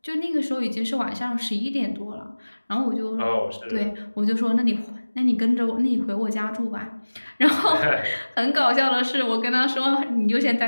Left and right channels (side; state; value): both; inverted; correlation -1.00